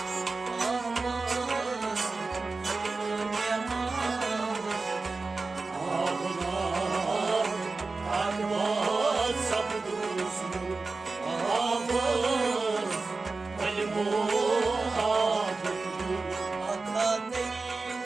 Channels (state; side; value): quieter; left; 3.8 dB